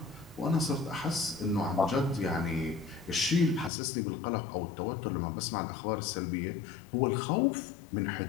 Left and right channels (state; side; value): drops out; right; at 3.7 s